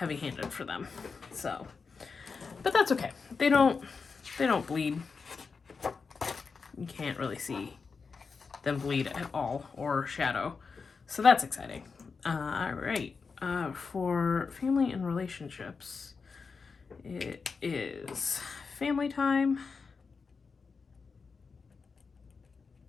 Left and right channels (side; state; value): right; quieter; 5.0 dB